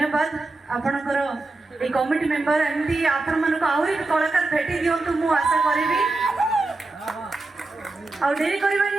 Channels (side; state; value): left; quieter; 3.2 dB